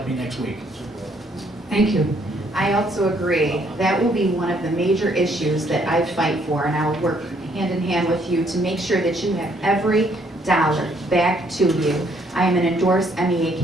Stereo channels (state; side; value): normal; both; correlation 0.67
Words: me next week. Thank you. I also agree. That will be one of the major issues that I fight for, and I will work hand in hand with you to make sure that you have every dollar back to you. I am an endorsed MEA